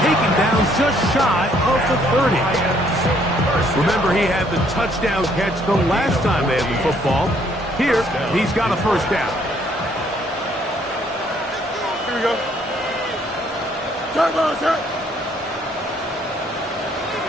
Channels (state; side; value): normal; both; correlation 0.66